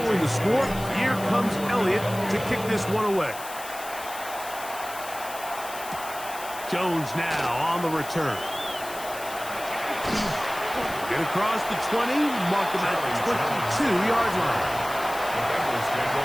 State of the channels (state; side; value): noise; left; hiss, 13 dB below the sound